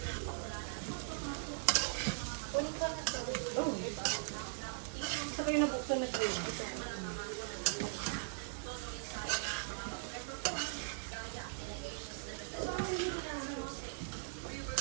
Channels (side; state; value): left; silent; digital silence